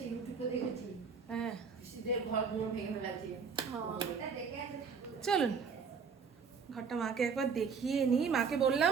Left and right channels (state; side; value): quieter; left; 5.8 dB